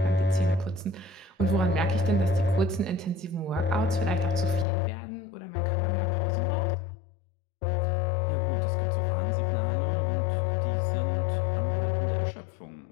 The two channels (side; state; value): right; drops out; at 4.7 s